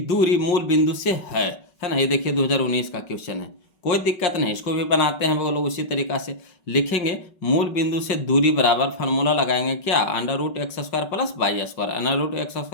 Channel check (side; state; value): right; late; 5.3 ms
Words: दूरी मूल बिंदु से है ना। ये देखिए 2019 का क्वेश्चन है, कोई दिक्कत नहीं, इसको भी बनाते हैं बोलो उसी तरीका से, लिखेंगे मूल बिंदु से दूरी बराबर फार्मूला लगाएंगे क्या √x² plus y²,